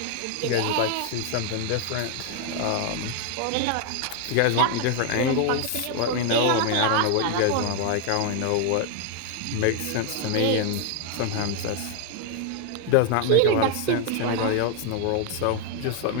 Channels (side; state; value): both; different; correlation 0.01